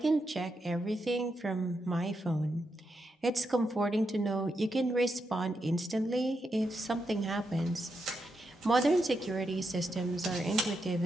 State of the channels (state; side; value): normal; both; correlation 0.84